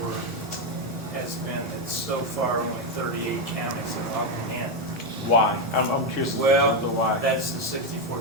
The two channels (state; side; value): normal; both; correlation 0.05